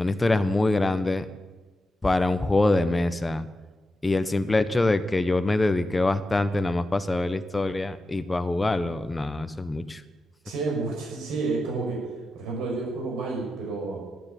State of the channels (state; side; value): normal; both; correlation 0.90